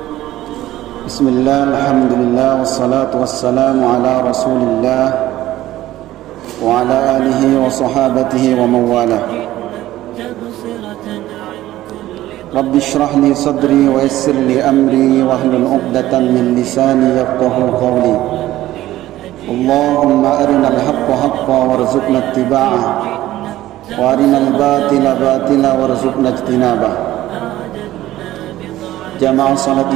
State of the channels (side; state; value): left; quieter; 15.0 dB